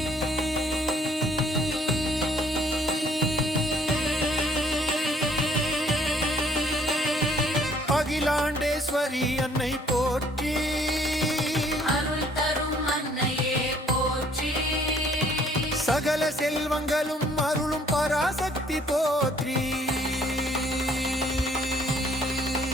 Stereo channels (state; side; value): normal; both; correlation 0.61